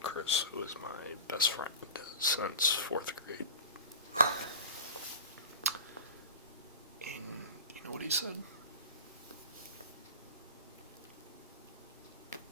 who is my best friend since 4th grade. And you know what he said?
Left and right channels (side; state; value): both; inverted; correlation -0.32